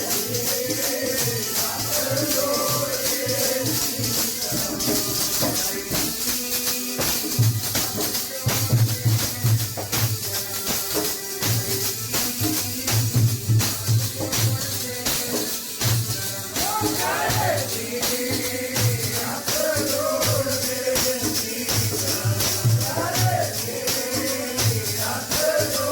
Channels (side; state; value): both; identical; correlation 1.00